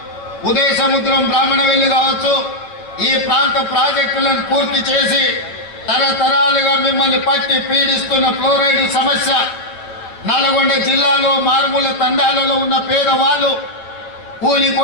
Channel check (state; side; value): late; right; 8.7 ms